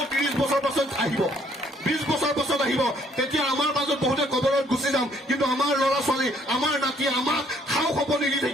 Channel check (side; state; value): both; normal; correlation 0.65